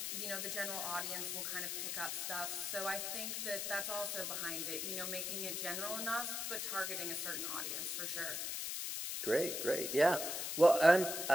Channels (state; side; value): noise; left; hiss, 2 dB below the sound